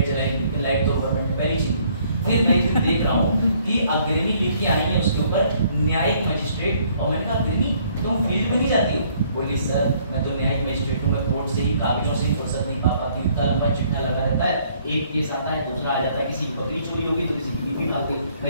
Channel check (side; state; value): both; inverted; correlation -0.63